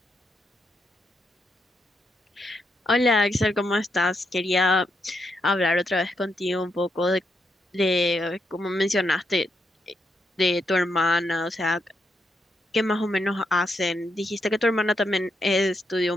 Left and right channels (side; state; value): both; normal; correlation 0.81